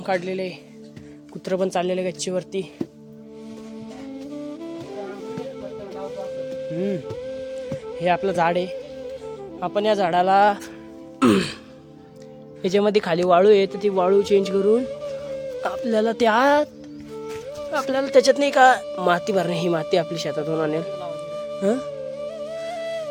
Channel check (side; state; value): both; identical; correlation 1.00